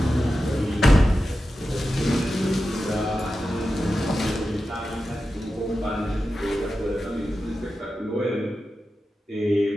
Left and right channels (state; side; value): normal; both; correlation 0.92